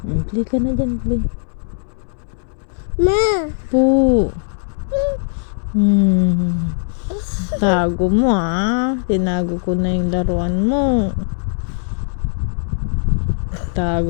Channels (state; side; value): silent; right; 67 dB below the other